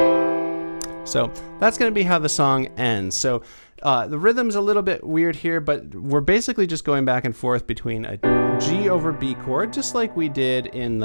So that's going to be how the song ends. So the rhythm's a little bit weird here, but we're basically just going back and forth between a G over B chord, just like we did in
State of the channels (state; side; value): inverted; both; correlation -1.00